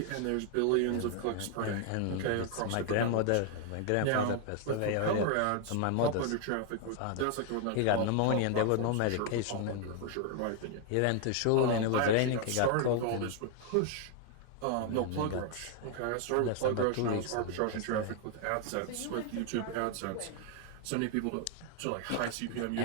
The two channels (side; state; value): both; different; correlation 0.00